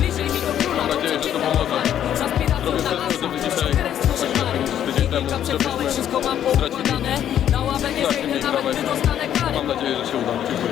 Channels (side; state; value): right; quieter; 10.4 dB